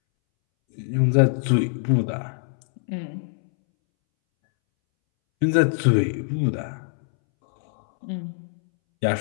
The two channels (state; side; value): silent; right; 63 dB below the other